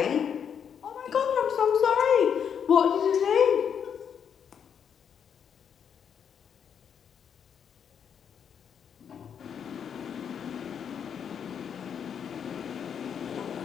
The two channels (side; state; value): right; quieter; 7.8 dB